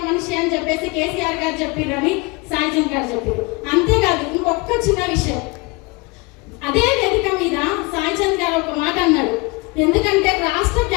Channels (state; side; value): quieter; right; 25.9 dB